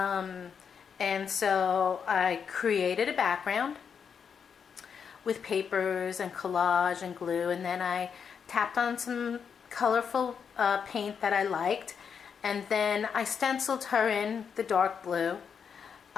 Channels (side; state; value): right; quieter; 6.8 dB